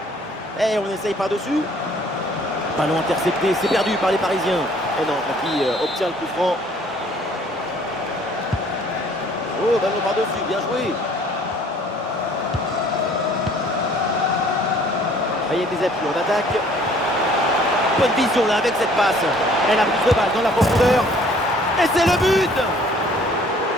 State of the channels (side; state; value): both; normal; correlation 0.57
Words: Et on essaye par-dessus. Ballon intercepté, c'est perdu par les Parisiens. Et non, qui obtient le coup franc. Oh, ballon par-dessus, bien joué. Il y a des appuis en attaque. Bonne vision là avec cette passe. Elle a plus de balle dans la profondeur. Et c'est le but.